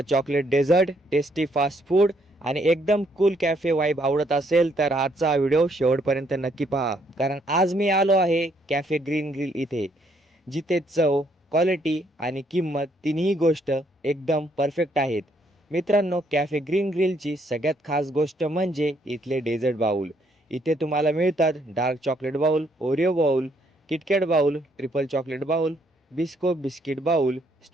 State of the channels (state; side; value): normal; both; correlation 0.70